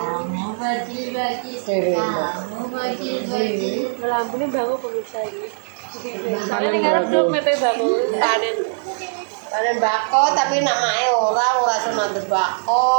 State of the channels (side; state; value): left; silent; 60 dB below the other